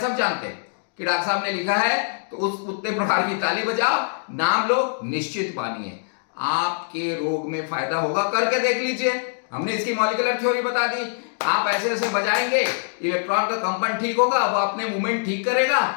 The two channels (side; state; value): right; silent; digital silence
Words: जानते हैं कि डॉक्टर साहब ने लिखा है तो उस उतने प्रकार की ताली बजाओ, नाम लो, निश्चित मानिए आपके रोग में फायदा होगा। करके देख लीजिए, हमने इसकी मॉलिक्यूलर थ्योरी बता दी। आप ऐसे ऐसे बजाएंगे, इलेक्ट्रॉन का कंपन ठीक होगा, वो अपने मूवमेंट ठीक करेगा,